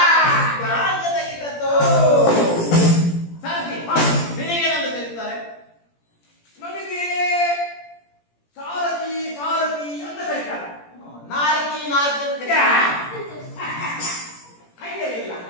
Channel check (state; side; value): late; right; 17 ms